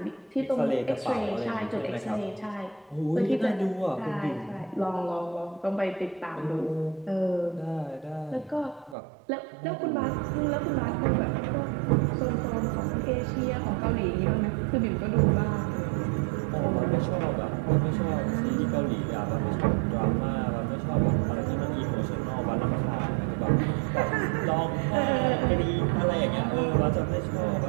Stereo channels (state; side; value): drops out; left; at 9.0 s